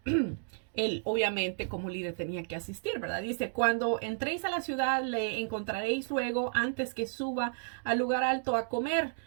él obviamente como líder tenía que asistir, ¿verdad? Dice, cuando entréis a la ciudad le encontraréis luego antes que suba al lugar alto a comer,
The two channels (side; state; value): left; silent; digital silence